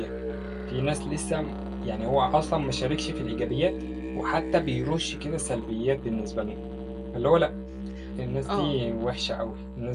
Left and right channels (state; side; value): identical; both; correlation 1.00